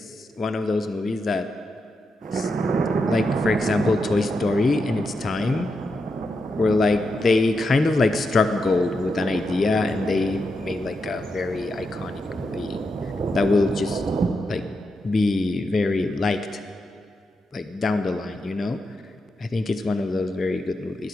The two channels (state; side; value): normal; both; correlation 0.85